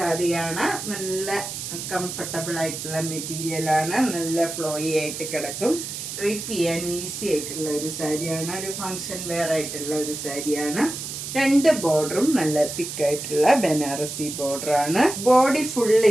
നല്ല കംഫർട്ടബിൾ ആയിട്ടുള്ള മെറ്റീരിയലാണ്. നല്ല ഫ്ലോയി ആയിട്ട് കിടക്കും. ഡ്രൈപ്പ് ചെയ്യാൻ ഈസി ആയിട്ടുള്ള ഒരു സാരിയാണ്. ഒരു ഫങ്ഷൻ വെയർ ആയിട്ടുള്ള ഒരു സാരിയാണ്. രണ്ട് ബോർഡറും നല്ല തിക്കായിട്ടുള്ള ബനാറസി ബോർഡറാണ്. ബോഡി ഫുൾ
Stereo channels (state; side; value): noise; right; hiss, 7 dB below the sound